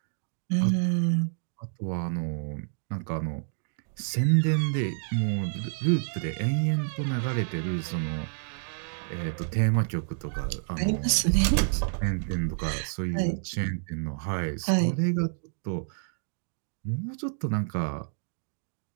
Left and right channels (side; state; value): left; silent; digital silence